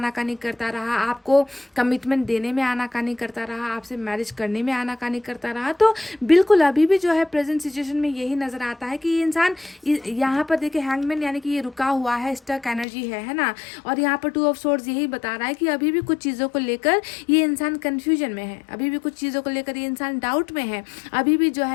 करता रहा, आपको कमिटमेंट देने में आनाकानी करता रहा, आपसे मैरिज करने में आनाकानी करता रहा। तो बिल्कुल अभी भी जो है प्रेजेंट सिचुएशन में यही नज़र आता है कि ये इंसान यहाँ पर देखिए हैंगमैन, यानी कि ये रुका हुआ है, स्टक एनर्जी है ना। और यहाँ पर 2 ऑफ सोर्ड्स यही बता रहा है कि अभी भी कुछ चीज़ों को लेकर ये इंसान कन्फ्यूजन में है, अभी भी कुछ चीज़ों को लेकर लेकर ये इंसान डाउट में है, अभी भी जो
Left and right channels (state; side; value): drops out; right; at 12.9 s